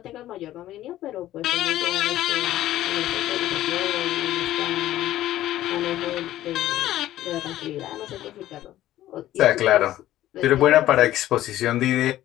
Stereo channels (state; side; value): quieter; right; 14.0 dB